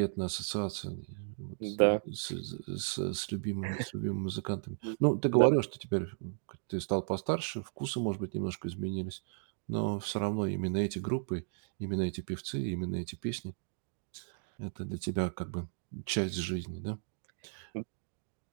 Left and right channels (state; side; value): silent; left; digital silence